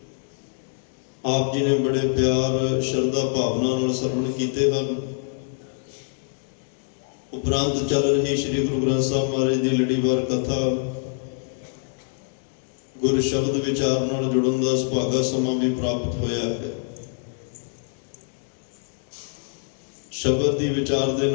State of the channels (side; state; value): right; silent; digital silence